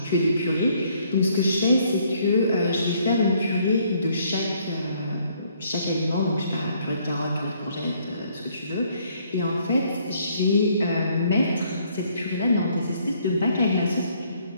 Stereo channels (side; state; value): both; inverted; correlation -0.66